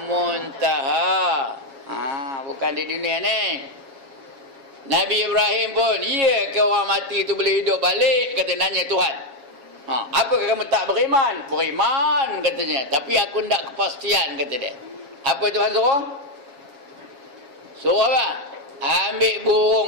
Muntaha. Bukan di dunia ni. Nabi Ibrahim pun, ya ke orang mati tu boleh hidup balik? Kata nanya Tuhan. Apakah kamu tak beriman? Beriman katanya. Tapi aku tak kepastian kata dia. Apa Tuhan suruh? Suruh apa? Ambil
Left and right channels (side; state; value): left; late; 7.3 ms